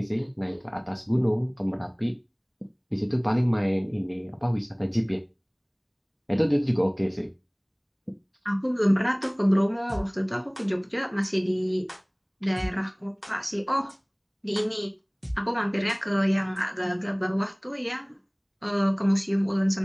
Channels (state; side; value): identical; both; correlation 1.00